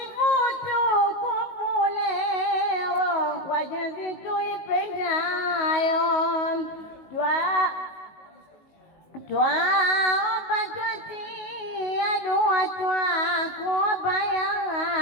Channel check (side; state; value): right; late; 19 ms